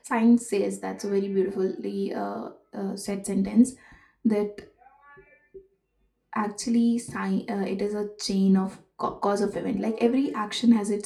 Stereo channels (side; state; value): both; identical; correlation 1.00